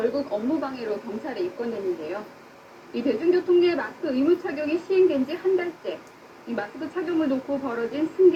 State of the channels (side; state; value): both; identical; correlation 1.00